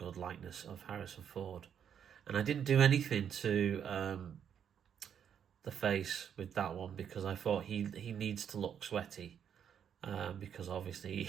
likeness of Harrison Ford. And I didn't do anything to the face with that one because I thought he needs to look sweaty because obviously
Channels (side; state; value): left; quieter; 8.4 dB